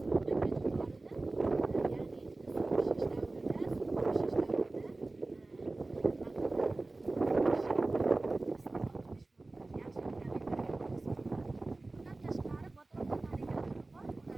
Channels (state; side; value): quieter; left; 3.1 dB